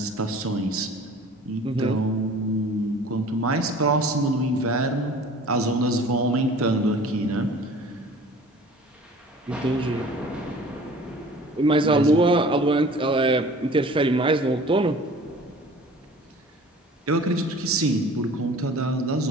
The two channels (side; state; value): both; normal; correlation 0.46